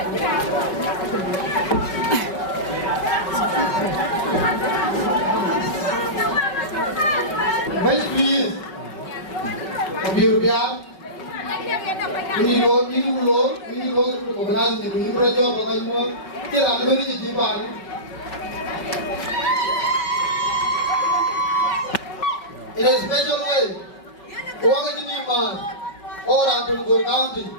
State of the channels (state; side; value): late; right; 5.3 ms